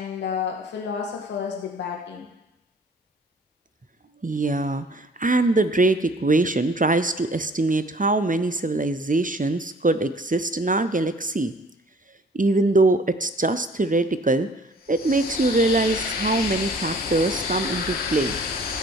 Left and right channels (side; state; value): both; normal; correlation 0.53